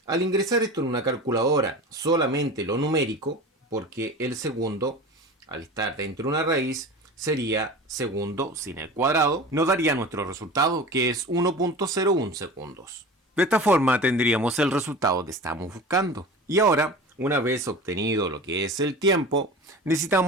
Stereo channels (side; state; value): both; normal; correlation 0.34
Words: Al ingresar esto en una calculadora, solamente lo numérico, porque el segundo, al estar dentro de una raíz, sería segundo sin el cuadrado, nos daría nuestro resultado, que es 1.01 segundos. De esta forma tendríamos el resultado que estamos buscando. Y ahora, una vez obtenido lo que es el tiempo,